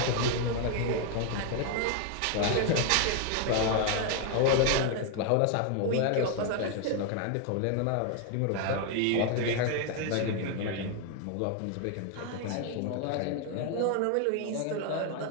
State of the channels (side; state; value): both; different; correlation 0.01